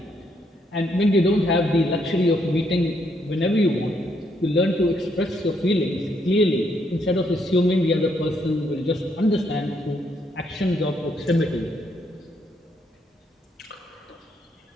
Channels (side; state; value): both; normal; correlation 0.74